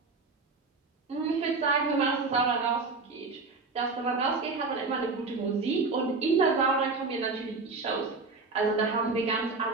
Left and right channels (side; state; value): left; quieter; 4.0 dB